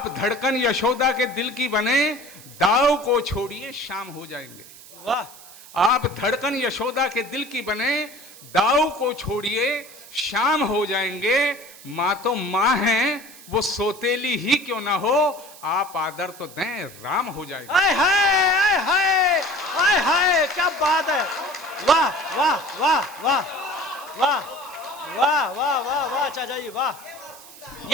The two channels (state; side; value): noise; right; hiss, 19 dB below the sound